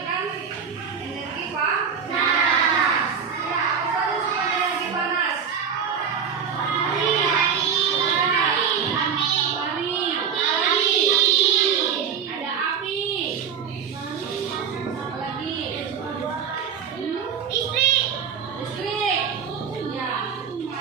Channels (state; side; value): quieter; left; 7.1 dB